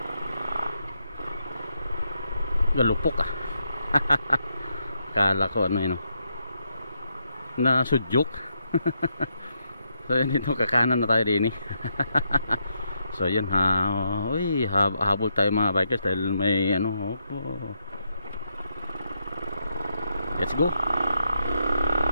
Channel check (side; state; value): both; inverted; correlation -0.80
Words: galupok kala ko na sudyok. So yun, ito kakanan na tayo rin so yun habol tayo mga bikers dahil may let's go.